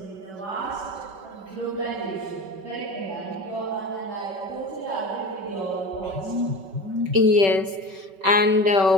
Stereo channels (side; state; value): left; late; 5.2 ms